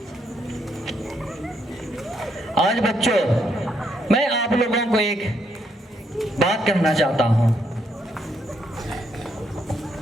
आज बच्चों मैं आप लोगों को एक बात कहना चाहता हूँ।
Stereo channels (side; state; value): both; normal; correlation 0.75